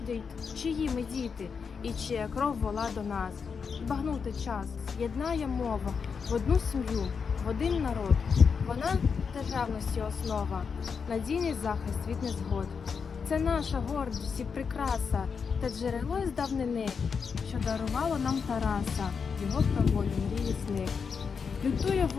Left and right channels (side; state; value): right; quieter; 5.9 dB